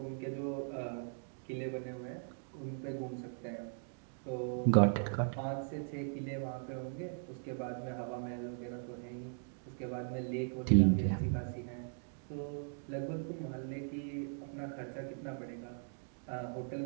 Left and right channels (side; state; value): left; silent; digital silence